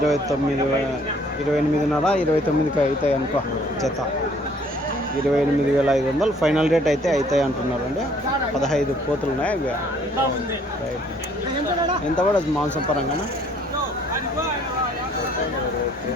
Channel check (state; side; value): normal; both; correlation 0.60